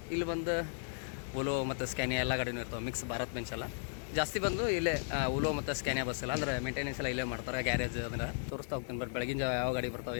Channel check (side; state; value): right; silent; digital silence